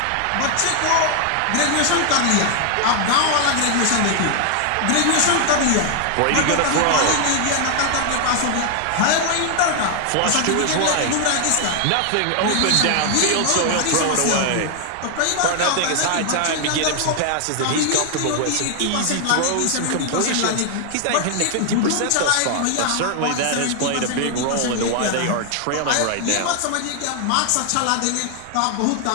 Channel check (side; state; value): both; different; correlation 0.00